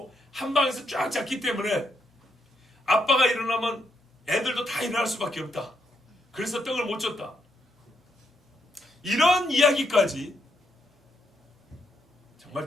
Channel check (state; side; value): normal; both; correlation 0.78